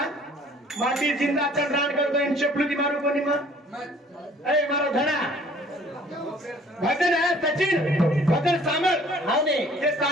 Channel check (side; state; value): both; normal; correlation 0.54